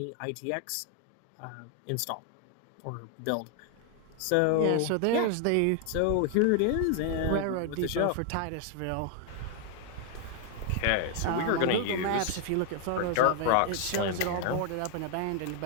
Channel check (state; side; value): different; both; correlation 0.00